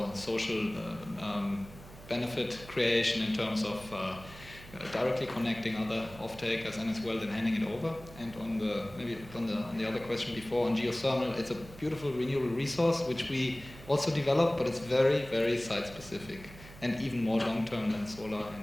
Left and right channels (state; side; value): noise; right; hum, 18 dB below the sound